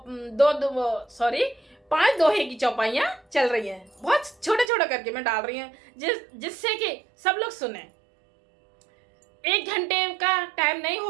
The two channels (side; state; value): left; drops out; at 4.7 s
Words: पांच दोहे की चौपाइयाँ चल रही हैं। बहुत छोटे छोटे करके मैं डाल रही हूँ जिससे कि सब लोग सुने। 1 घंटे का टाइम नहीं